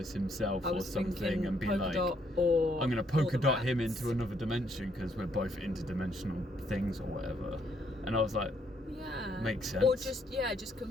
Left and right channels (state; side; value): normal; both; correlation 0.71